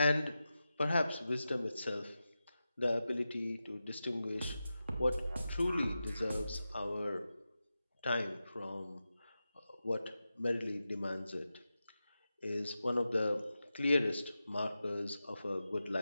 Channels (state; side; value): inverted; both; correlation -0.92